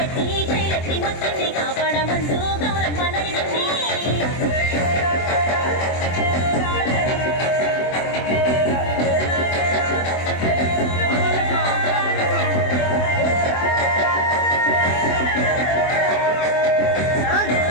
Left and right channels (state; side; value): late; right; 24 ms